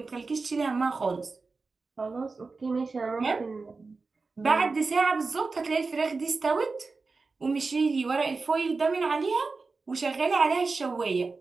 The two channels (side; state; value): left; quieter; 4.1 dB